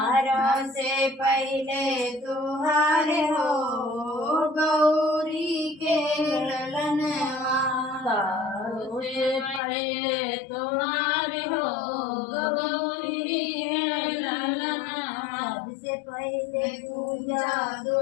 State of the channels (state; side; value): drops out; right; at 9.6 s